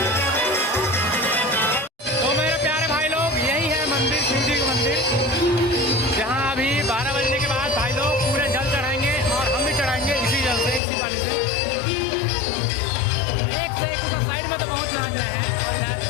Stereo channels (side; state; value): right; drops out; at 10.8 s